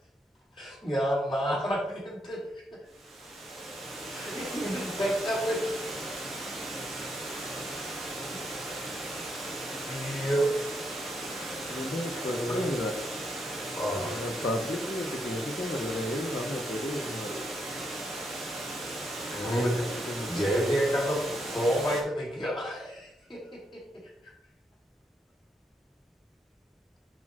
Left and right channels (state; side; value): normal; both; correlation 0.78